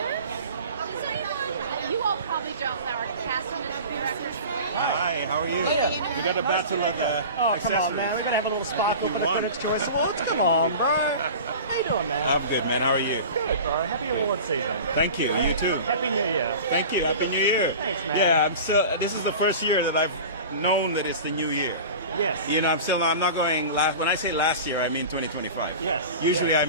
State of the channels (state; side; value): inverted; both; correlation -0.36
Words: You all probably don't know our casting and directors. Hi, how are you? We got a battle of the Oh, accessories. come on, man. We're going to have a little sparkle for the Critics' Choice Awards. Come on, bro. How you doing, man? I'm good, man. How are you? Good, bro. Happy award season. Thank you. You too. Happy New Year. Thank you. Happy New Year. Thanks, man. Yeah, I'm still. This is the first year that I've known that it's the new year. Yes. You know, I'm not going last. When I say last year, I mean 2025. Yes. Usually yes.